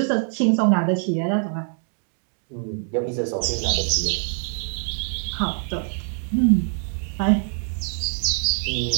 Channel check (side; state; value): left; silent; 63 dB below the other